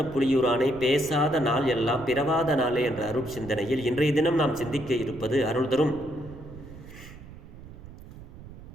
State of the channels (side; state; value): right; noise; rumble, 16 dB below the sound